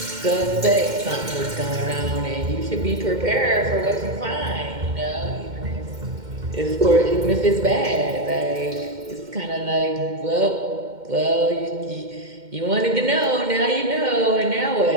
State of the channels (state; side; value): late; left; 2.1 ms